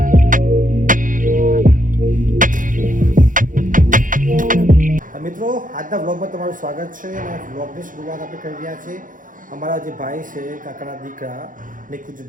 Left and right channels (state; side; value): late; left; 0.39 ms